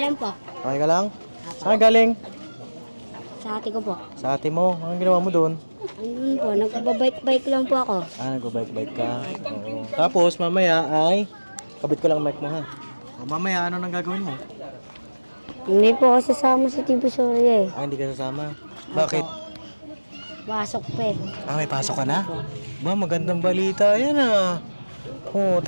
lang po. Okay ka lang? Saan ka galing? Sa ate ko po. Sa ate mo, anong ginawa mo doon? Ayun po, nagbabike-bike lang po ako. Nagbabike-bike ka. Oo. Tapos mamaya ay kabit ko lang mic mo ha. O, mamaya ano nang gagawin mo? Hindi po ako sasama sa TV Sorry eh. Hindi ka sasama. Bakit? Pasok pa eh. May pasok ka na? Ba, magandang balita yan ah. Oh,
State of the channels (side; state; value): both; inverted; correlation -1.00